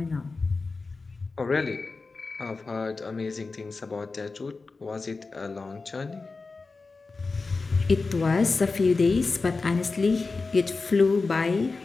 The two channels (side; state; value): right; quieter; 4.0 dB